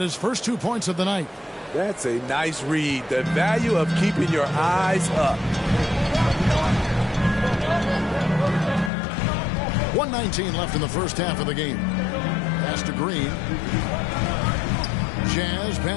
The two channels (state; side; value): drops out; right; at 8.9 s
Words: his first 2 points of the night. That's a nice read. The value of keeping your eyes up. 1:19 left in the first half of the game. Pass to Green. Jazz